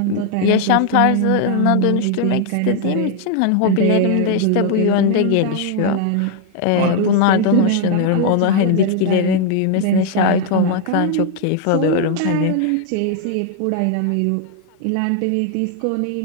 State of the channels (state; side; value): different; both; correlation 0.00